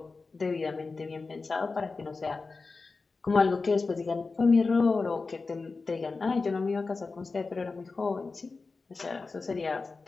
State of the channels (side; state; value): right; quieter; 4.1 dB